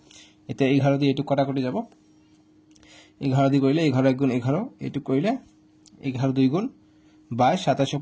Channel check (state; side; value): identical; both; correlation 1.00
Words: এতিয়া 11 দি এইটো কটা কৰি যাব 11 দি কৰিলে 11 * 11 এইটো কৰিলে 11 2 গুণ 22 27